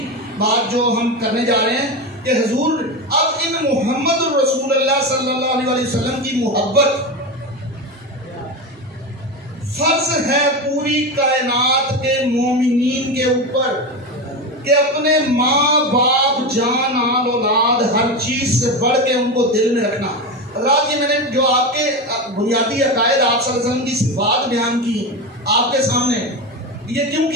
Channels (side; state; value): both; normal; correlation 0.19